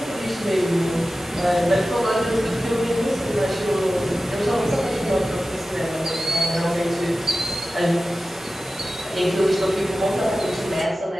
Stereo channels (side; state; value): both; normal; correlation 0.94